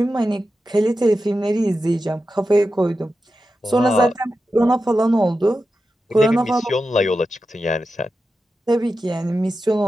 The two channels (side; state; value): both; normal; correlation 0.91